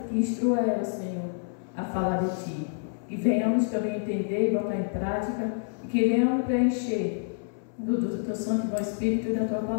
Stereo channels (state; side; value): silent; right; 59 dB below the other